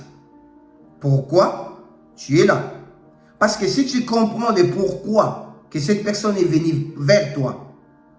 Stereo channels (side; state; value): both; identical; correlation 1.00